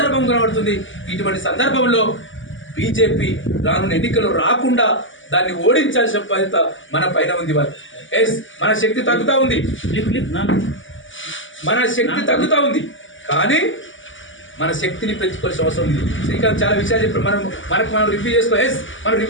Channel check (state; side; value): late; right; 0.56 ms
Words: కనబడుతుంది. ఇటువంటి సందర్భంలో బీజేపీ రానున్న ఎన్నికల్లో రాకుండా దాన్ని ఓడించాల్సిన బాధ్యత మన పైన ఉంది. మన శక్తి తగ్గుతూ ఉంది, మన శక్తి తగ్గుతూ ఉంది, కానీ మన శక్తిని పెంచుకోవాల్సిన అవసరం ఉంది. శ్రీకాంత్ చాలా విషయాలు చెప్పారు. మనం రివ్యూ చేసుకోవాలి. మనం